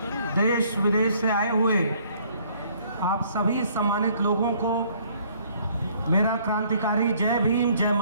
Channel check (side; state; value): both; inverted; correlation -0.61